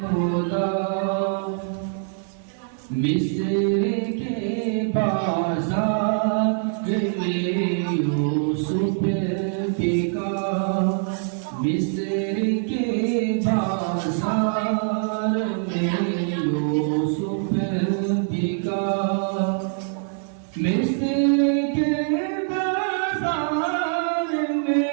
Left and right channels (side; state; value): left; silent; 63 dB below the other